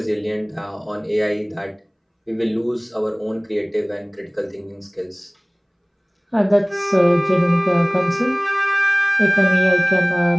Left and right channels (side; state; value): both; identical; correlation 1.00